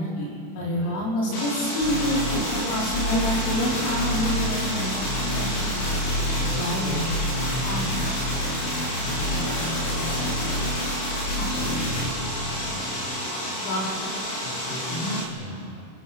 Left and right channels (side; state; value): right; late; 31 ms